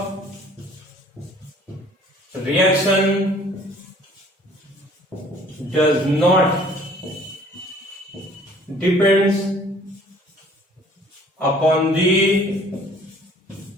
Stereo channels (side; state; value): both; normal; correlation 0.54